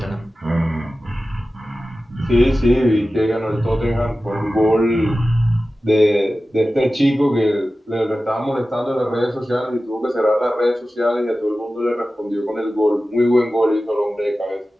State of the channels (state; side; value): normal; both; correlation 0.95